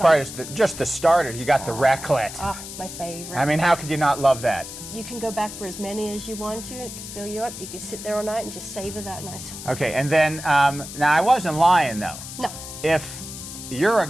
part is just the starter. You got the raclette. My favorite. I mean, how could you not love that? You can go back for as many as you want to. It can fill you up. You can sit there all night and just savor that nice. Okay, and then, now I wasn't lying though. No. If you're a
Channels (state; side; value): noise; left; hiss, 11 dB below the sound